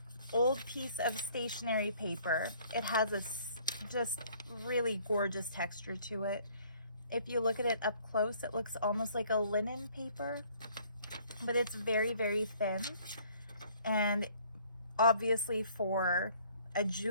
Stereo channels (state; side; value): inverted; both; correlation -0.59